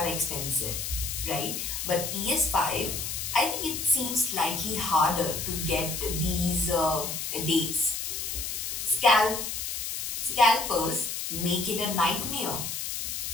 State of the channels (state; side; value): noise; left; hiss, 4 dB below the sound